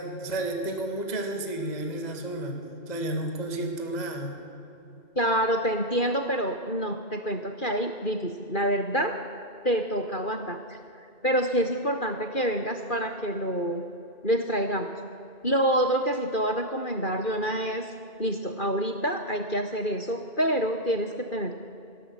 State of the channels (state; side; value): late; right; 2.4 ms